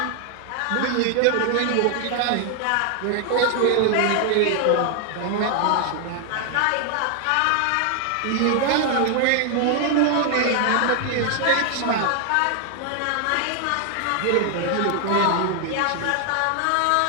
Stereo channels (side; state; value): both; different; correlation 0.00